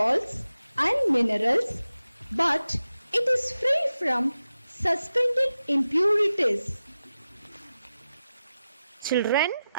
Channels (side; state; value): both; inverted; correlation -0.92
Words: and minerals, but it is free from suspended impurities. Children,